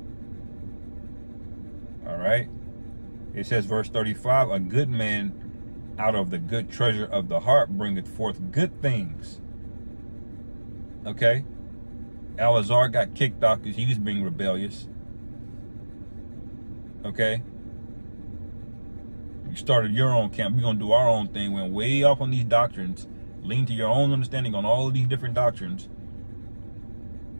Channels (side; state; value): both; inverted; correlation -1.00